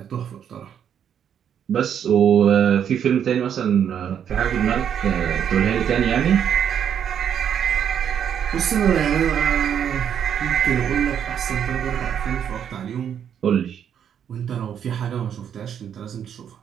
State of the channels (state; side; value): quieter; left; 8.7 dB